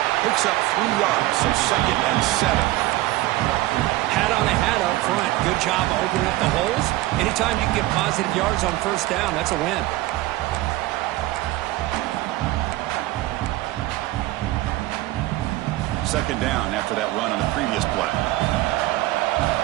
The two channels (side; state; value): left; quieter; 17.4 dB